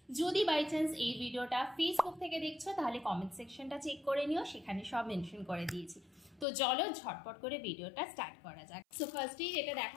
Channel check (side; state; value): right; drops out; at 6.5 s